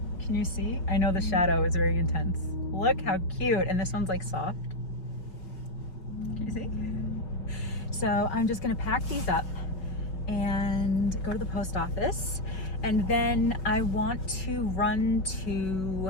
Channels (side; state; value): right; late; 5.3 ms